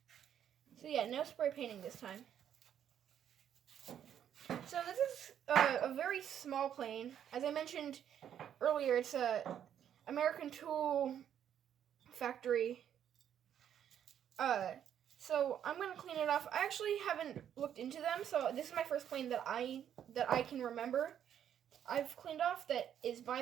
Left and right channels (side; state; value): left; quieter; 9.6 dB